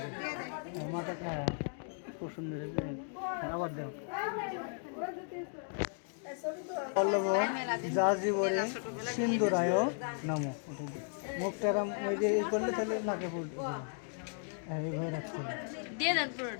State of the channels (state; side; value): silent; right; 54 dB below the other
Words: মাথাটা খুব সুন্দর আবার দাও পল্লব যাজীবরে সিন্ধুরায় নম মুখটারাম ওই যে করলে তাহলে নাকে ফুল এইভাবে রাখতে দিয়ে দেন